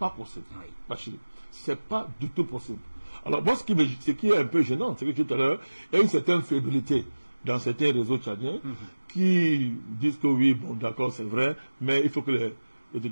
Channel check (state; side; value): inverted; both; correlation -1.00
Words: possible. Oui. Bachir. C'est pas du tout possible. Alors, moi, ce qui est un peu gênant, c'est que tout à l'heure, il y a une certaine fébrilité dans certains réseaux tchadiens qui disent que oui, bon, d'accord, c'est vrai, mais il faut que les